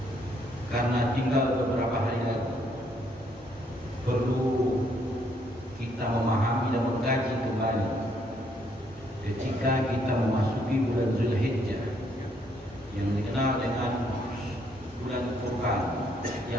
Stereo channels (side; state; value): both; normal; correlation 0.70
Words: karena tinggal beberapa hari lagi, perlu kita memahami dan mengkaji kembali ketika kita memasuki bulan Zulhijjah yang dikenal dengan bulan Kurban,